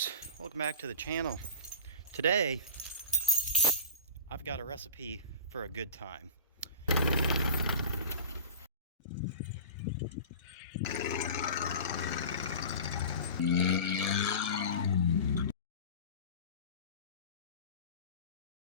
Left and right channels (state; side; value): inverted; both; correlation -0.33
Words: welcome back to the channel. Today, I've got a recipe for a good time.